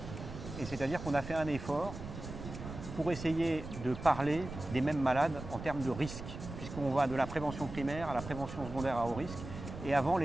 et c'est-à-dire qu'on a fait un effort pour essayer de parler des mêmes malades en termes de risque, puisqu'on va de la prévention primaire à la prévention secondaire à haut risque. Et avant,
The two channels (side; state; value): right; noise; rumble, 10 dB below the sound